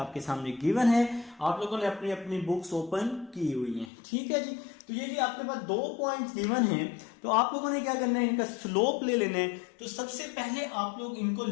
सामने गिवन है, आप लोगों ने अपनी अपनी बुक्स ओपन की हुई हैं, ठीक है जी। तो ये जी आपके पास 2 पॉइंट्स गिवन हैं, तो आप लोगों ने क्या करना है, इनका स्लोप ले लेना है। तो सबसे पहले आप लोग इनको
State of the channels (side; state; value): right; drops out; at 3.9 s